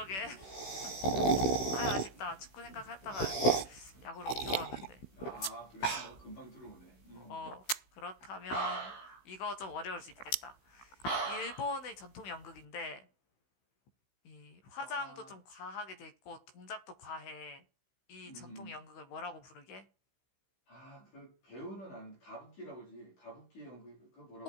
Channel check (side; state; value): right; late; 16 ms